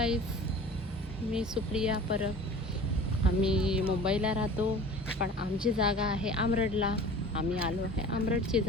मी सुप्रिया परब. आम्ही मुंबईला राहतो, पण आमची जागा आहे आमरडला. आम्ही आलो आहे आमरडची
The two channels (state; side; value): normal; both; correlation 0.41